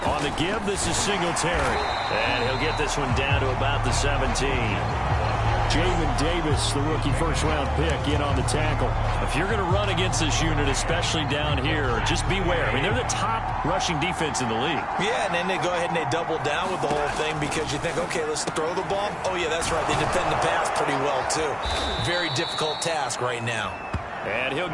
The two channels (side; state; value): both; identical; correlation 1.00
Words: On the give, this is Singletary. And he'll get this one down to about the 17. Jamin Davis, the rookie first-round pick, in on the tackle. If you're going to run against this unit, especially down here, just beware. I mean, they're the top rushing defense in the league. Yeah, and then they go ahead and they double down with the whole thing because you think, okay, let's throw the ball. Oh, yeah, that's right. They defend the pass pretty well, too. Very difficult task right now. And he'll